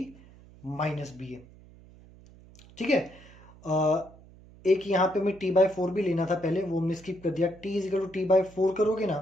minus BA. ठीक है. एक यहां पे मैं T/4 भी लेना था पहले, वो हमने स्किप कर दिया. T is equal to T/4 करोगे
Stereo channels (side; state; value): right; noise; hum, 23 dB below the sound